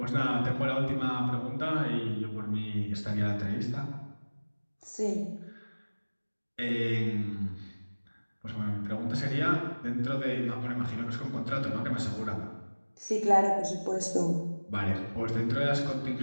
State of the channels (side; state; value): both; inverted; correlation -1.00